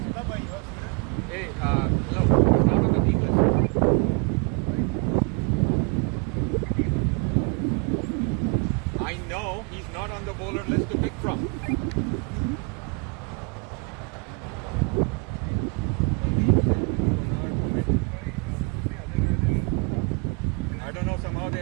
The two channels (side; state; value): left; quieter; 32.7 dB